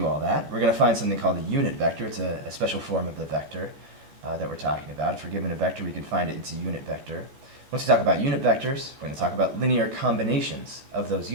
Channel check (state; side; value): late; left; 14 ms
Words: all that, we're going to find something called a unit vector. It's a special form of the vector that we're talking about. If we're given a vector, we can find it. It's a unit vector. Once we talk about unit vectors, we're going to talk about linear combinations of those